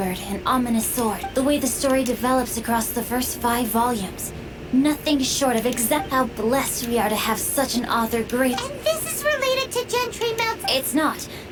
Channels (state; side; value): identical; both; correlation 1.00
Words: and ominous sword. The way the story develops across the first 5 volumes. Nothing short of exact how blessed we are to have such an author great... And this is related to Gentry Mount... It's not.